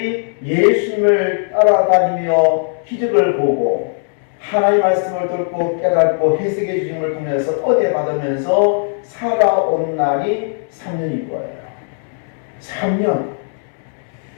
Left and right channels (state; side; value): silent; right; 68 dB below the other